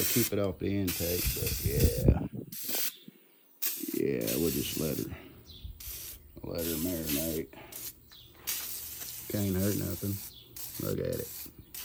keep it off the intake, but yeah, we'll just let her marinate. Can't hurt nothing. Look at it.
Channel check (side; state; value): both; identical; correlation 1.00